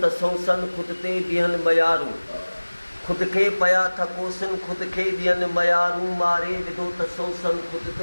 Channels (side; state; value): both; inverted; correlation -1.00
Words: त सोसन खुद ते बीहनि मयारूं खुद खे पया थकोसन खुद खे ॾियनि मयारूं मारे विधो त सोसन खुद